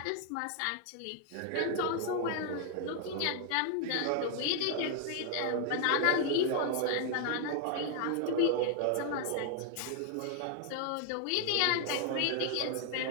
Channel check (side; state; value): both; different; correlation 0.00